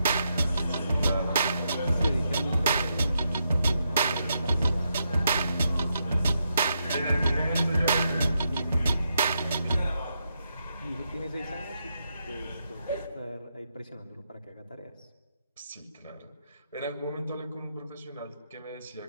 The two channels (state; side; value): inverted; both; correlation -0.81